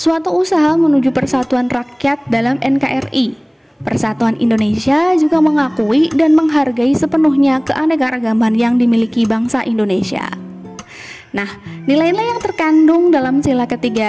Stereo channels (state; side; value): identical; both; correlation 1.00